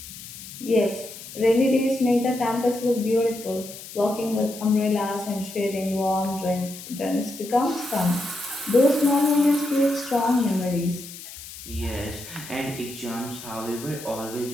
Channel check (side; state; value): left; noise; hiss, 14 dB below the sound